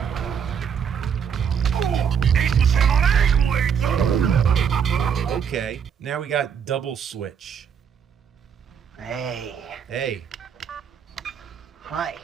8% on ankle weights. Okay, now we got Double Switch. Hey. Hey, Hi.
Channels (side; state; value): left; quieter; 7.4 dB